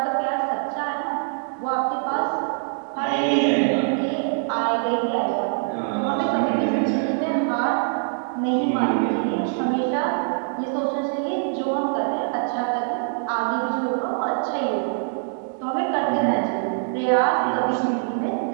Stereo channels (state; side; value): silent; left; 63 dB below the other